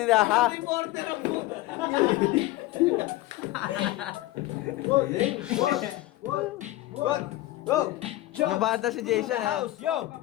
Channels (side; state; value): right; quieter; 16.8 dB